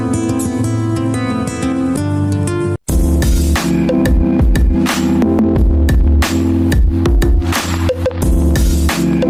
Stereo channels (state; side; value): identical; both; correlation 1.00